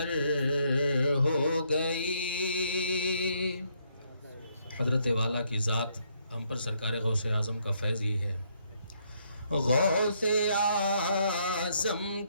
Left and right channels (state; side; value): inverted; both; correlation -0.72